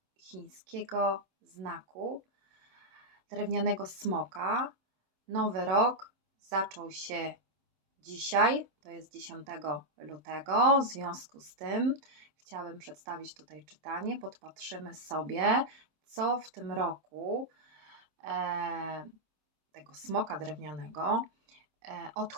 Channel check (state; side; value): late; left; 27 ms